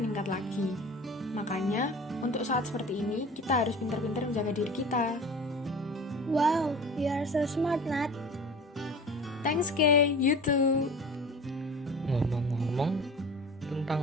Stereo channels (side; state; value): both; normal; correlation 0.38